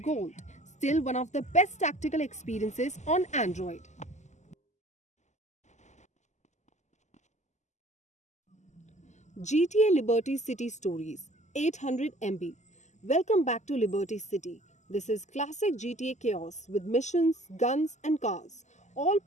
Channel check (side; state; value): right; late; 0.34 ms